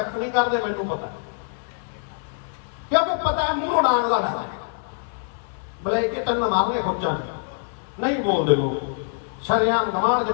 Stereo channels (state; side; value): silent; right; 62 dB below the other